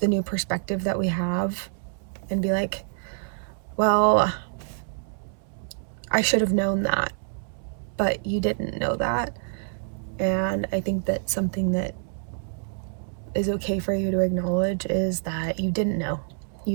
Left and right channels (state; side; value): silent; left; 60 dB below the other